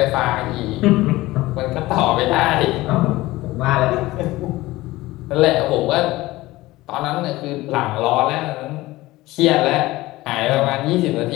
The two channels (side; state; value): right; quieter; 18.6 dB